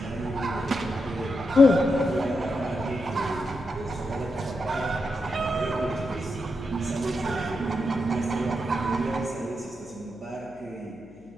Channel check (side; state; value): left; noise; hum, 25 dB below the sound